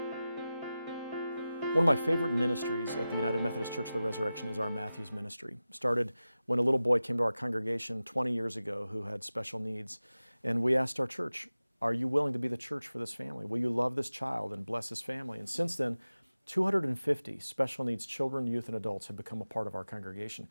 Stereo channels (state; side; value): inverted; both; correlation -0.95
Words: One of my favorite ministries at the United Methodist Church of the Resurrection is our Matthews ministry. Started when a little boy came to our congregation 20 years ago who had special needs. And we asked our church, are you willing to be the church for this family? Will you love this child and bless his family? And since then, 250 special needs children, youth, and adults have become a part of our congregation